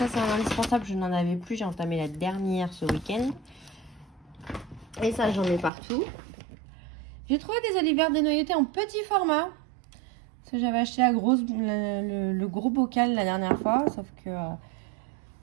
c'est un indispensable. Je n'en avais plus. J'ai entamé la dernière ce week-end. Et ça j'en ai partout. J'ai trouvé des olives vertes dénoyautées en petit format. Parce que j'avais acheté le gros bocal la dernière fois. Sauf que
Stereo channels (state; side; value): drops out; left; at 5.7 s